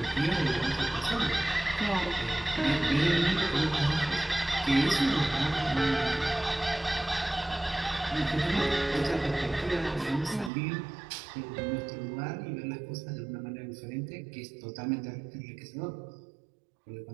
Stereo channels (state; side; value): drops out; left; at 10.5 s